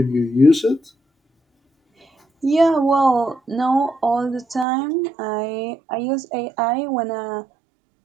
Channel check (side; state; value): left; drops out; at 4.7 s